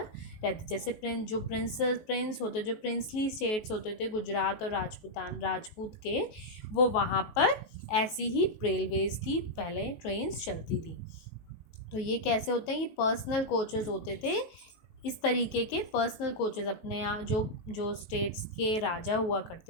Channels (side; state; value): right; late; 19 ms